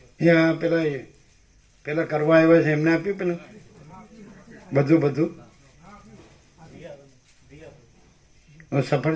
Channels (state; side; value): identical; both; correlation 1.00